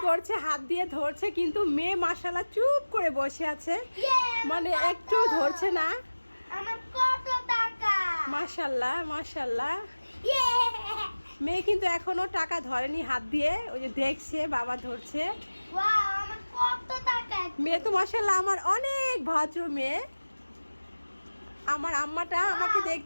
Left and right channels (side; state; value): both; inverted; correlation -1.00